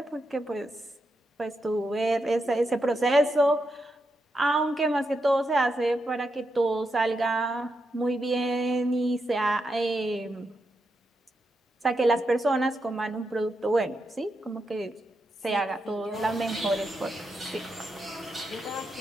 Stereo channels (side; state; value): both; normal; correlation 0.84